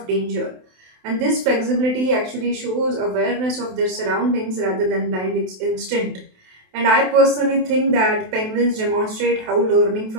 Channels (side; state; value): left; late; 27 ms